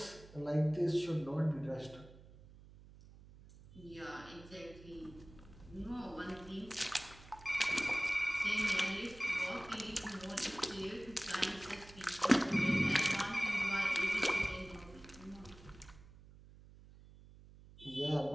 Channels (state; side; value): noise; right; hum, 20 dB below the sound